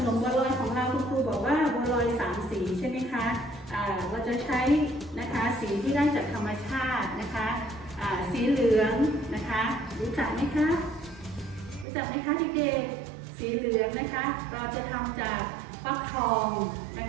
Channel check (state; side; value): drops out; left; at 11.9 s